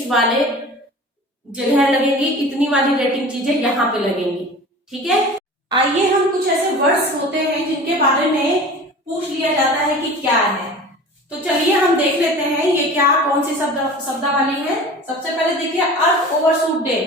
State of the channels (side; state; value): both; normal; correlation 0.39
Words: वाले जगह लगेंगी, इतनी वाली रेटिंग चीजें यहाँ पे लगेंगी, ठीक है। आइए हम कुछ ऐसे वर्ड्स होते हैं जिनके बारे में पूछ लिया जाता है कि क्या है, तो चलिए हम देख लेते हैं ये क्या कौन सी शब्दावली है। सबसे पहले देखिए अर्थ ओवरशूट डे,